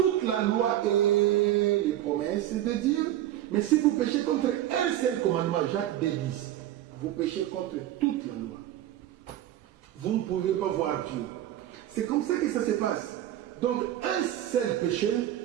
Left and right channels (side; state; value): left; quieter; 12.8 dB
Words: la loi et les promesses de Dieu. Mais si vous péchez contre un seul commandement, Jacques 2:10, vous péchez contre toute la loi. Vous ne pouvez pas voir Dieu. C'est comme ça que ça se passe. Donc un seul péché